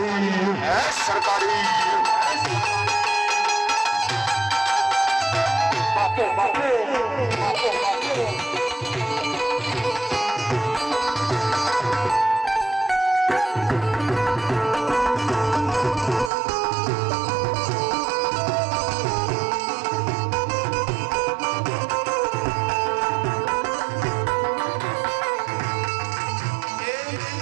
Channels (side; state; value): left; drops out; at 16.3 s